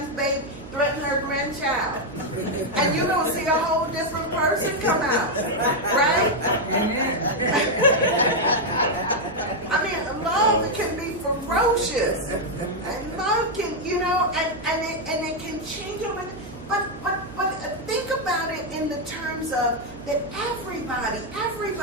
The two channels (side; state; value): right; noise; hum, 18 dB below the sound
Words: baby, threaten her grandchild. And you're going to see a whole different person come out. Right? I mean, love can be ferocious. And love can, you know, and it can change over. But think about it in the terms of that everybody